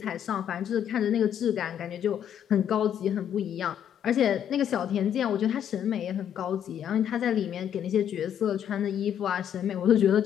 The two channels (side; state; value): right; quieter; 9.5 dB